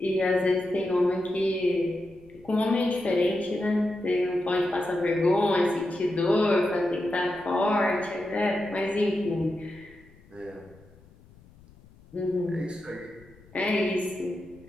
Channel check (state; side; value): noise; left; rumble, 26 dB below the sound